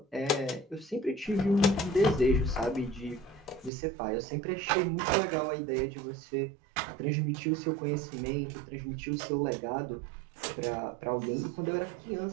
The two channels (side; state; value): left; drops out; at 3.7 s